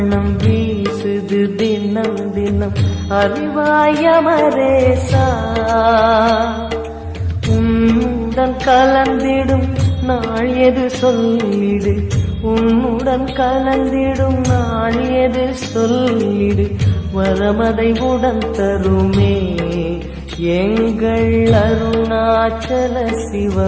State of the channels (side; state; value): both; identical; correlation 1.00